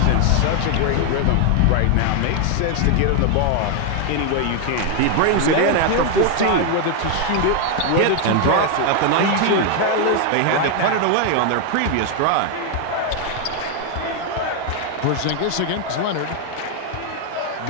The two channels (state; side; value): different; both; correlation 0.01